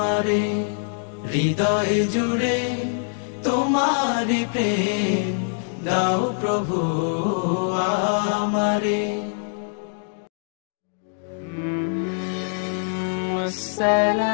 হৃদয় জুড়ে তোমারি প্রেম দাও প্রভু আমারে।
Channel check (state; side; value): silent; right; digital silence